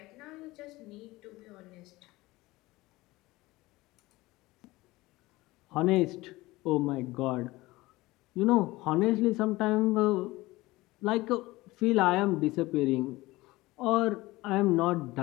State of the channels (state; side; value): quieter; right; 19.8 dB